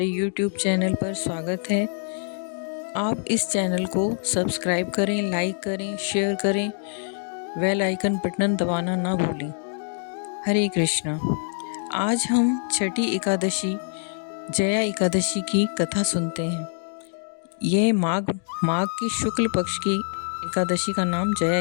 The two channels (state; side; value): silent; right; 55 dB below the other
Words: YouTube चैनल पर स्वागत है। आप इस चैनल को सब्सक्राइब करें, लाइक करें, शेयर करें, बेल आइकन बटन दबाना ना भूलें। हरे कृष्णा। आज हम छठी एकादशी जया एकादशी की कथा सुनते हैं। ये माघ की शुक्ल पक्ष की एकादशी का नाम जया